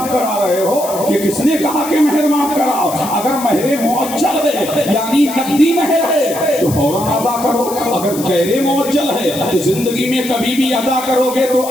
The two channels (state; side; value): noise; left; hiss, 11 dB below the sound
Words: کرا رہے ہو؟ یہ کس نے کہا کہ مہر معاف کراؤ؟ اگر مہر معجل ہے یعنی نقدی مہر ہے تو فوراً ادا کرو، اگر غیر معجل ہے تو زندگی میں کبھی بھی ادا کرو گے تو